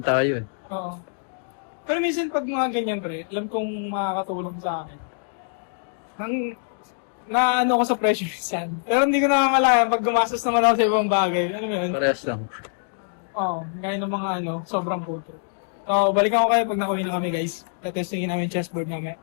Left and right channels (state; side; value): silent; right; digital silence